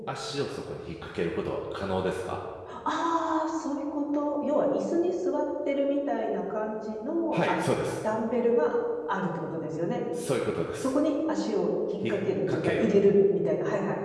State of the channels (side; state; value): both; identical; correlation 1.00